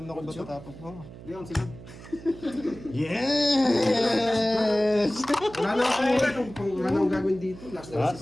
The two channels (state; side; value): noise; right; hum, 16 dB below the sound